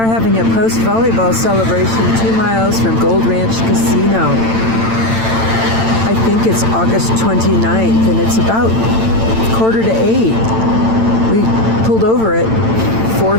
having a post-volleyball celebration 2 miles from Gold Ranch Casino. I think it's August 29th, and it's about 7:45. We pulled over at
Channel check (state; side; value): late; left; 8.9 ms